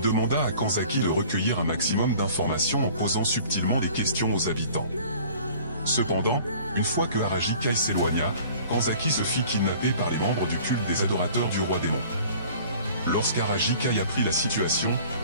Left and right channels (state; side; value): inverted; both; correlation -0.48